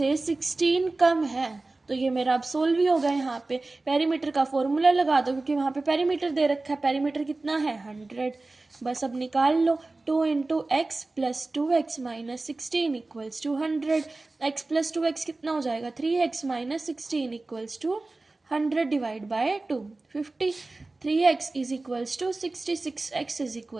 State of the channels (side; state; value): left; quieter; 3.2 dB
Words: 16 कम है। तो ये मेरा अब सोल्व ही होगा। यहाँ पे पेरीमीटर का फॉर्मूला लगा दो क्योंकि वहाँ पे पेरीमीटर दे रखा है। पेरीमीटर कितना है 100, बस अब निकाल लो। 2 × x + 2x - 16 = 100, x + 2x कितना हो जाएगा 3x - 16 = 100 divide by 2 50, 3x is equals to 66, x is